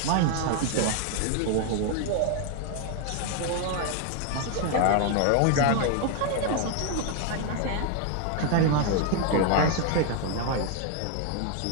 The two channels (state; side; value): different; both; correlation 0.01